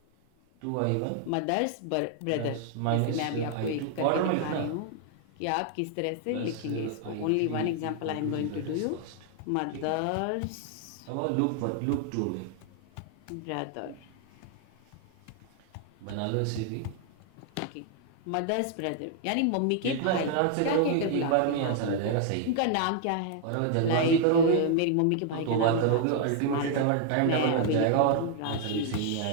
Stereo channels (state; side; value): different; both; correlation 0.00